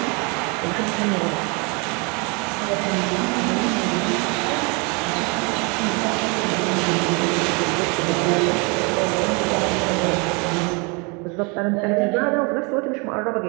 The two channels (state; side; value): quieter; left; 31.1 dB